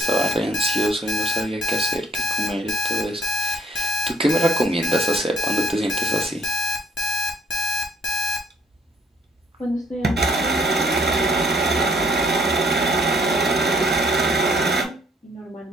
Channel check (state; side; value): normal; both; correlation 0.66